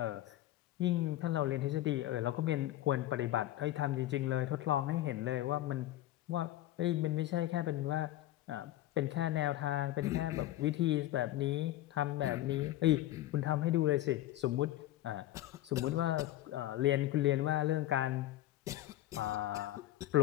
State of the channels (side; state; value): right; quieter; 14.6 dB